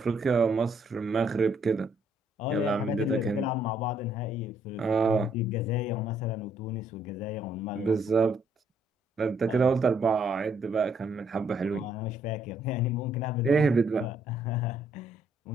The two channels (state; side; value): normal; both; correlation 0.69